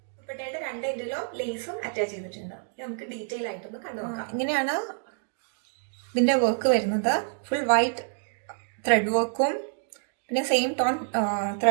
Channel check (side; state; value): left; silent; digital silence